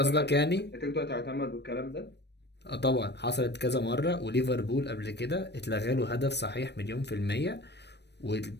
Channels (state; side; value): late; right; 0.50 ms